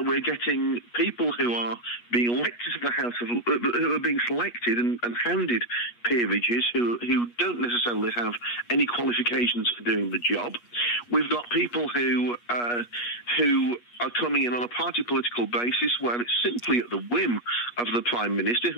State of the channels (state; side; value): late; right; 8.3 ms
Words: we're getting people who are being elected to the House of... who are being selected and handed peerages who don't necessarily have any qualifications for doing the job. We've got people who are coming in on a party political basis where it's simply at the whim of the Prime Minister,